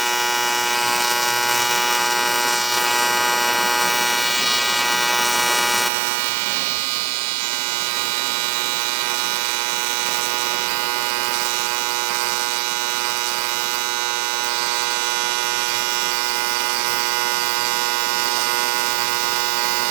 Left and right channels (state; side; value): drops out; left; at 5.9 s